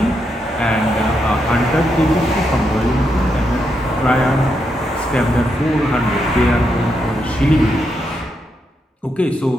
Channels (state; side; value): normal; both; correlation 0.81